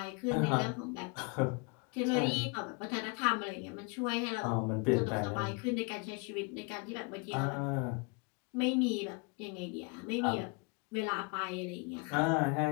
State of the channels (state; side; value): quieter; right; 32.7 dB